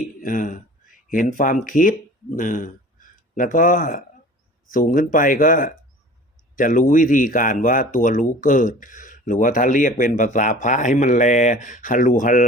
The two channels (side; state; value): both; normal; correlation 0.43